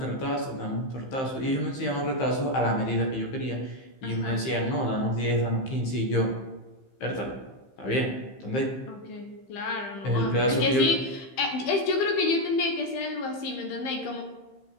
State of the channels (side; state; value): right; late; 15 ms